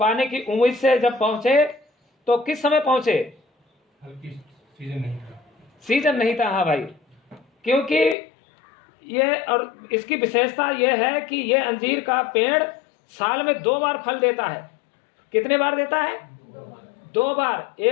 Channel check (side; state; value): right; drops out; at 8.2 s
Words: की उम्मीद से जब पहुंचे तो किस समय पहुंचे? सीजन नहीं था। हाँ भाई, क्योंकि ये, और इसकी विशेषता ये है कि ये अंजीर का पेड़ साल में 2 बार फल देता है। कितने बार देता है? 2 बार।